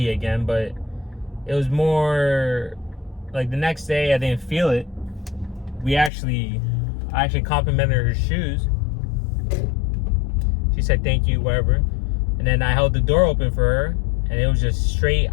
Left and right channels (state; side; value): drops out; right; at 6.1 s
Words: again, but it was more like the next day I didn't feel it. I actually complimented her shoes. She said thank you, whatever. And then I held the door open for her, and it was just straight